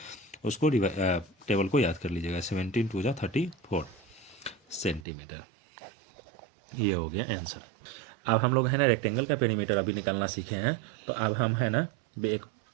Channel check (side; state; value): left; drops out; at 5.1 s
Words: उसको टेबल को याद कर लीजिएगा, 17 टू जा 34 सेंटीमीटर। ये हो गया आंसर। अब हम लोग है ना रेक्टेंगल का पेरीमीटर अभी निकालना सीखे हैं, तो अब हम है ना